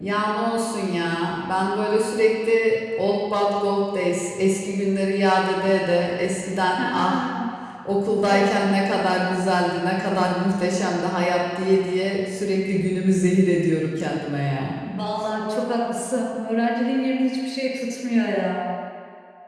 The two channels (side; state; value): both; identical; correlation 1.00